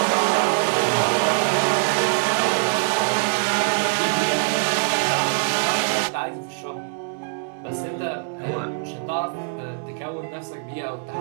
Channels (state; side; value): silent; left; digital silence